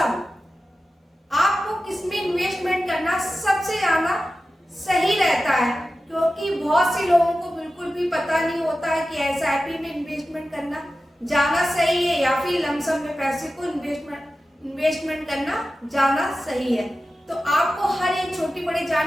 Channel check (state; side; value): normal; both; correlation 0.94